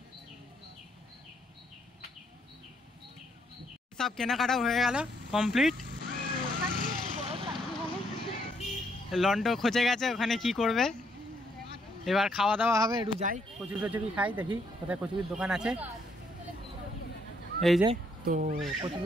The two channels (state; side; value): normal; both; correlation 0.72